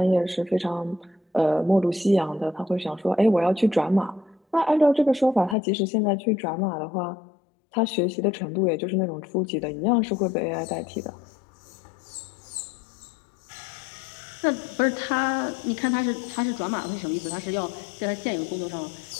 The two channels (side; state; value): right; drops out; at 5.6 s